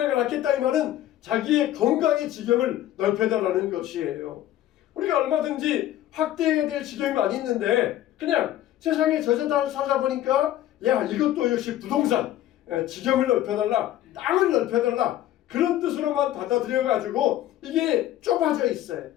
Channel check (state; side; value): quieter; right; 13.1 dB